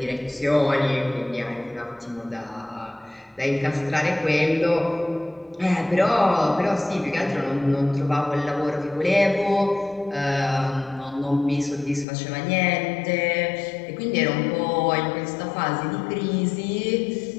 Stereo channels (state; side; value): drops out; right; at 12.1 s